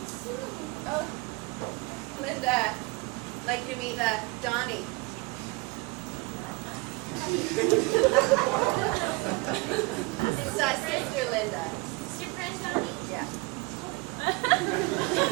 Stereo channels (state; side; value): quieter; left; 25.6 dB